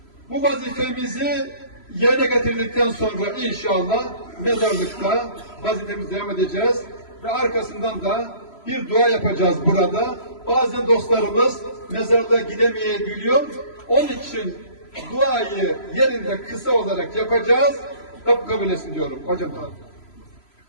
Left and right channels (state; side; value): late; right; 3.0 ms